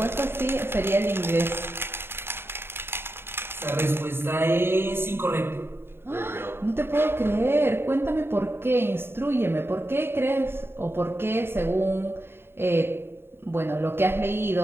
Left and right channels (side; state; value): left; late; 0.11 ms